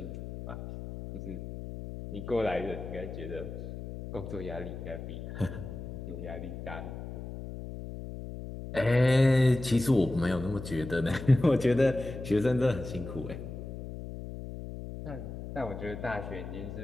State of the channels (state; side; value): noise; left; hum, 9 dB below the sound